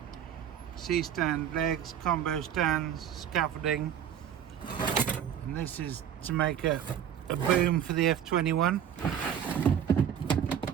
C-stand legs, combo stands, scaffolding. And this is to make a boom for the F21.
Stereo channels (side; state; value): left; quieter; 9.3 dB